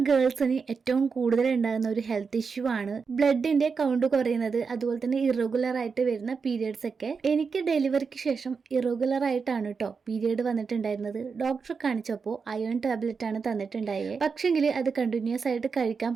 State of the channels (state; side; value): quieter; left; 5.3 dB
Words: ഗേൾസിന് ഏറ്റവും കൂടുതൽ ഉണ്ടാകുന്ന ഒരു ഹെൽത്ത് ഇഷ്യൂ ആണ് ബ്ലഡിൻ്റെ കൗണ്ട് കുറയുന്നത്, അതുപോലെ തന്നെ ഇറഗുലർ ആയിട്ട് വരുന്ന പീരിയഡ്സ് ഒക്കെ. എനിക്ക് ഡെലിവറിക്ക് ശേഷം ഇറഗുലർ ആയിട്ടാണ് കേട്ടോ പീരിയഡ് വന്നിട്ടുണ്ടായിരുന്നത്. ഡോക്ടറെ കാണിച്ചപ്പോൾ അയൺ ടാബ്ലറ്റ് ആണ് തന്നിട്ടുണ്ടായത്. പക്ഷെങ്കിൽ അത് കണ്ടിന്യൂസ് ആയിട്ട് കഴിക്കാൻ